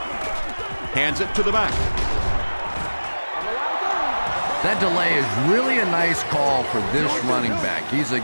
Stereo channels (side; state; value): both; inverted; correlation -1.00